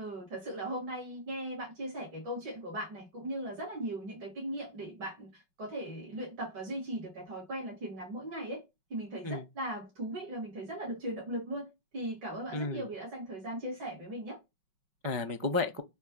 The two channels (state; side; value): late; left; 5.4 ms